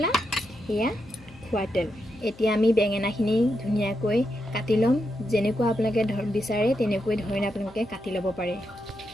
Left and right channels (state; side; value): noise; left; hum, 23 dB below the sound